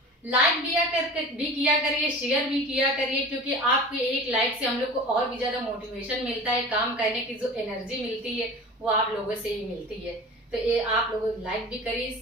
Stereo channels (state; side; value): normal; both; correlation 0.37